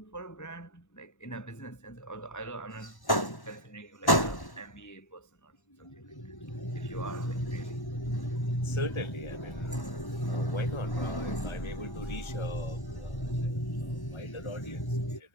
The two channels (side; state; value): right; late; 1.1 ms